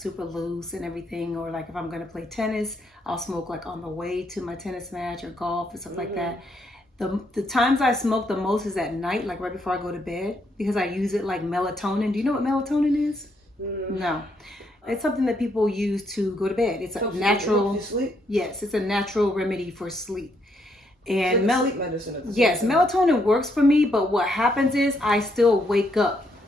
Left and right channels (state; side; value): normal; both; correlation 0.75